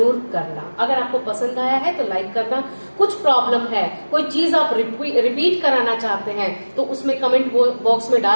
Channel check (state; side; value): inverted; both; correlation -1.00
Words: करना। अगर आपको पसंद आया है तो लाइक करना। कुछ प्रॉब्लम है, कोई चीज आप रिपीट कराना चाहते हैं तो उसमें कमेंट बॉक्स में